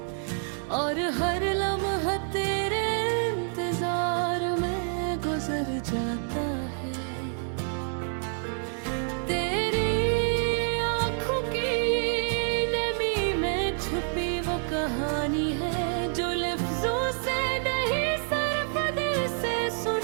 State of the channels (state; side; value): silent; left; 59 dB below the other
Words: और हर लम्हा तेरे इंतजार में गुजर जाता है। तेरी आँखों की नमी में छुपी वो कहानी है, जो लफ्जों से नहीं सिर्फ दिल से